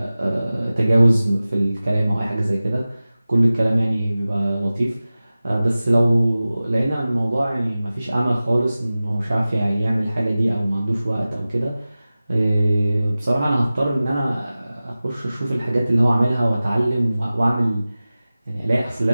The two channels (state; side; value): inverted; both; correlation -0.97